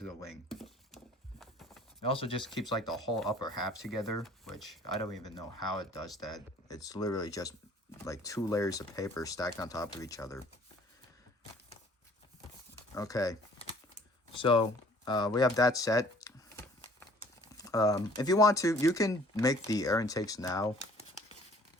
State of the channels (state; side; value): normal; both; correlation 0.54